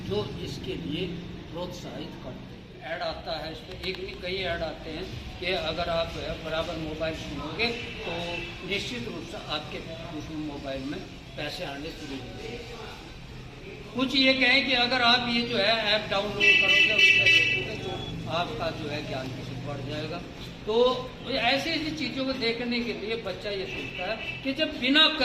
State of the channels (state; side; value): identical; both; correlation 1.00